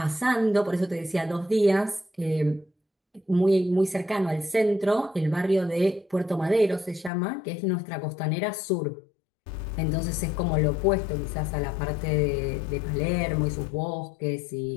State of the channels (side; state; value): right; drops out; at 7.1 s